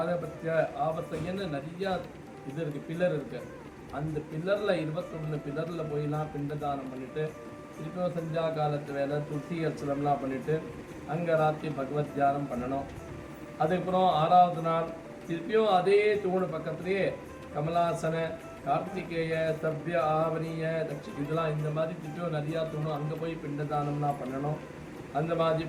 ஆவர்த்தையன்னு நிறையா இது இருக்குது, பில்லர் இருக்குது. அந்த பில்லரில் 21 பில்லரில் போயெல்லாம் பிண்டதானம் பண்ணிவிட்டு திருப்பியும் சந்தியா காலத்து வேலை துளசி அர்ச்சனம்லாம் பண்ணிவிட்டு அங்கே ராத்திரி பகவத் தியானம் பண்ணணும். அதுக்கப்புறம் 6வது நாள் திருப்பியும் அதே தூணு பக்கத்துலேயே கமலாசன, கார்த்திகேய சவ்ய ஆவணிய இதெல்லாம் இந்த மாதிரி திட்டம் நிறையா தோணும். அங்கே போய் பிண்டதானம்னா பண்ணணும். அந்த மாதிரி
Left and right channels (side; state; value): both; identical; correlation 1.00